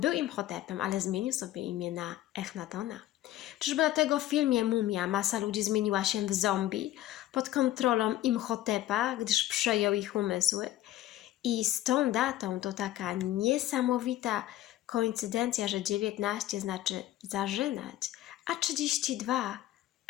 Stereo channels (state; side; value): quieter; right; 14.3 dB